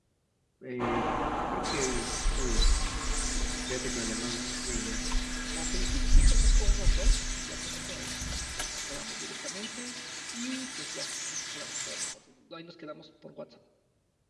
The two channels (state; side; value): identical; both; correlation 1.00